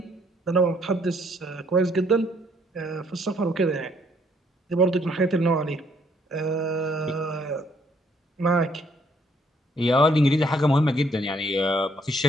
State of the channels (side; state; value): both; normal; correlation 0.67